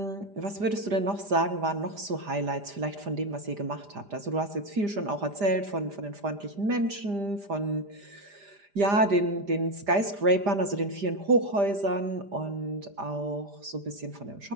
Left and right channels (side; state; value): left; late; 5.0 ms